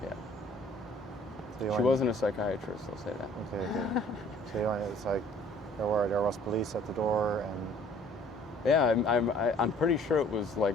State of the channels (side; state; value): both; normal; correlation 0.55